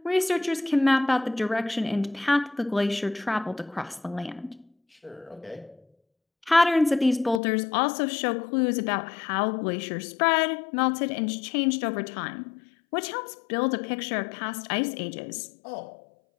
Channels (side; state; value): right; drops out; at 7.4 s